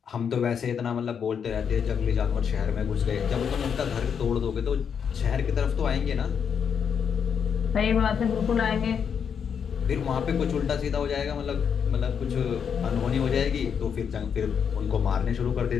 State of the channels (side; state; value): right; quieter; 7.2 dB